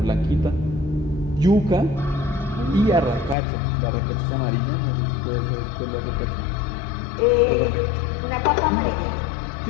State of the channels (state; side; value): drops out; right; at 3.4 s